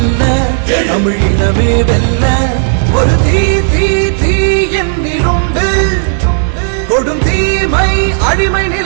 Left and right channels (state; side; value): silent; left; digital silence